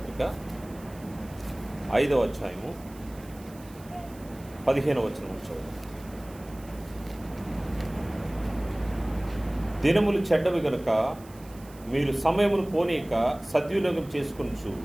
5వ అధ్యాయము 15వ వచనం చదువు. దినములు చెడ్డవి గనుక మీరు సమయమును పోనీక సద్వినియోగం చేసుకొనుచు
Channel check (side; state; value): right; noise; hiss, 23 dB below the sound